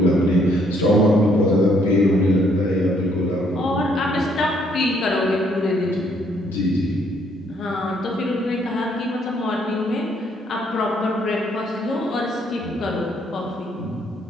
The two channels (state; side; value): normal; both; correlation 0.68